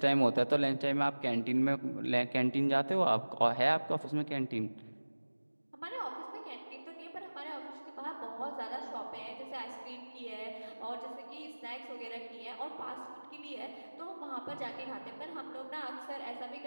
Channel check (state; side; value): inverted; both; correlation -1.00